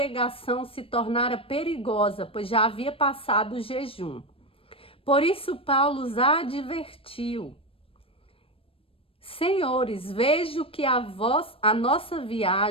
se tornara perigosa, pois já havia passado o jejum. Por isso Paulo os advertiu: senhores, vejo que a nossa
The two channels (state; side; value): late; right; 0.27 ms